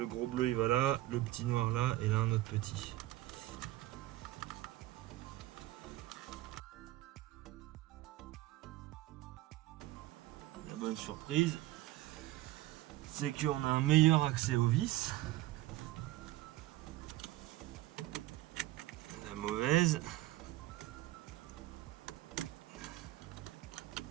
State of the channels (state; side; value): quieter; left; 16.6 dB